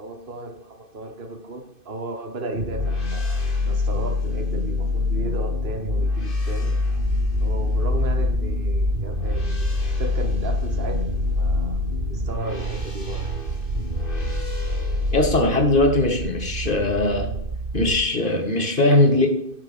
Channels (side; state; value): left; late; 2.6 ms